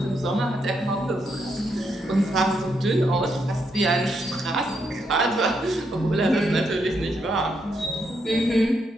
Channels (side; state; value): both; normal; correlation 0.79